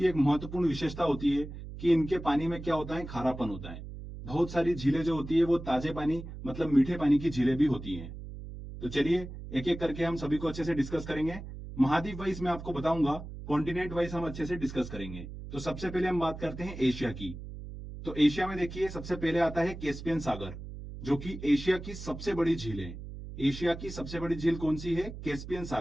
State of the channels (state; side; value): noise; right; hum, 11 dB below the sound